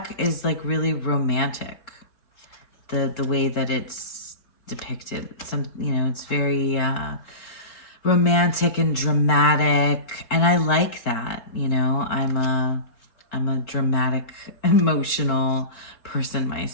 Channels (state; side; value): late; right; 3.7 ms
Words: is like really romantic. The way that it's depicted. It's very romantic and dramatic, and I like that. I'm a dramatic, emotional person